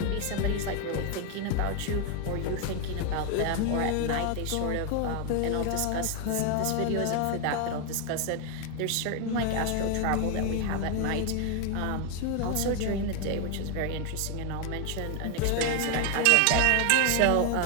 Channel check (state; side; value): different; both; correlation 0.01